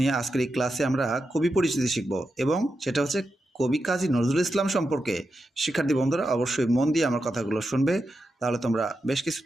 আজকের এই ক্লাসে আমরা কবি পরিচিতি শিখব এবং সেটা হচ্ছে কবি কাজী নজরুল ইসলাম সম্পর্কে। শিক্ষার্থী বন্ধুরা অবশ্যই মন দিয়ে আমার কথাগুলো শুনবে, তাহলে তোমরা বেশ কিছু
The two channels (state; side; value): normal; both; correlation 0.88